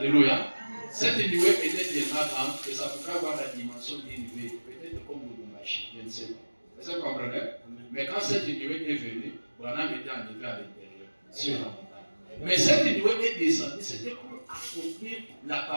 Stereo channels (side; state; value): both; inverted; correlation -1.00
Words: Cette nuée était tellement grande que ça pouvait avoir la dimension d'une nuée. Peut-être comme le Lumbashi, je ne sais pas. Est-ce que vous comprenez? Mais quand cette nuée est venue, Branham était enlevé à l'intérieur, sur la montagne. Mais cette nuée est descendue, c'était pour accomplir la